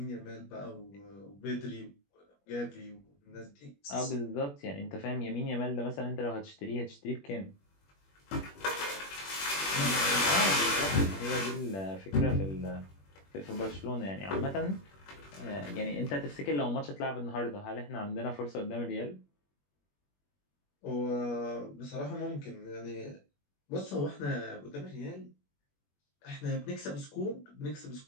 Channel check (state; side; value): late; right; 21 ms